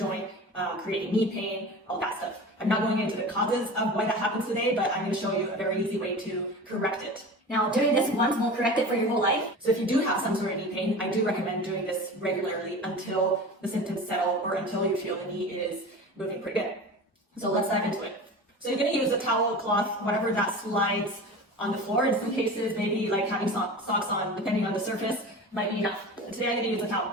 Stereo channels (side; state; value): both; normal; correlation 0.34